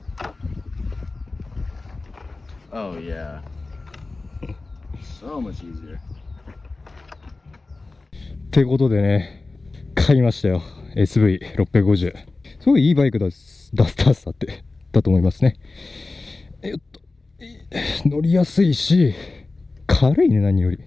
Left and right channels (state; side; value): quieter; right; 3.5 dB